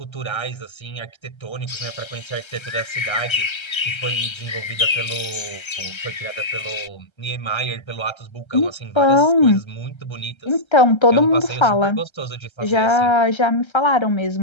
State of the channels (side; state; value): right; late; 1.3 ms